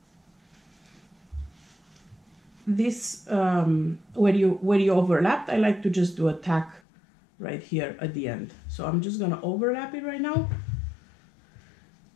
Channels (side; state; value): right; drops out; at 6.8 s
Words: This where you overlapped, I like to just do a tack right here at the end. So I'm just gonna overlap it right now